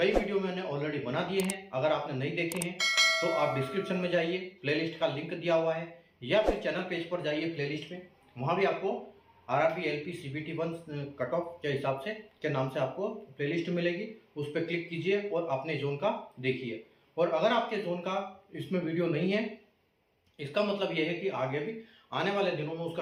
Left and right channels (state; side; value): identical; both; correlation 1.00